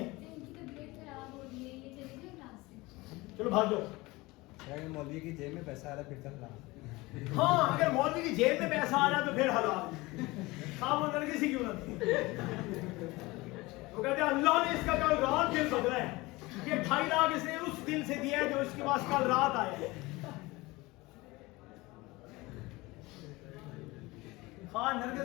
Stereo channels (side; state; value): right; quieter; 21.8 dB